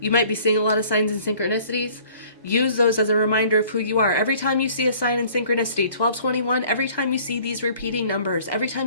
might be seeing a lot of signs and synchronicities. Use those as a reminder of who you are. Every time you see a sign in synchronicity, 1221, every time you see these repeating numbers, every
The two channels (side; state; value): both; inverted; correlation -0.53